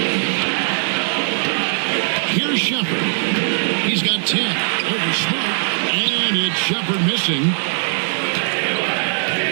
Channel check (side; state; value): left; silent; digital silence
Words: Here's Shepherd. He's got 10. Over Smart. And it's Shepherd missing.